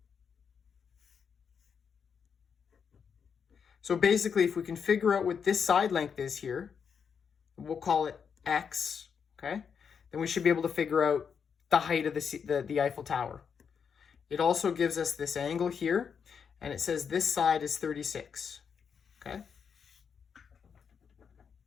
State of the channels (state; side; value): quieter; right; 6.7 dB